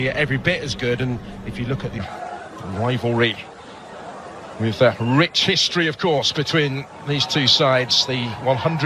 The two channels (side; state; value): both; identical; correlation 1.00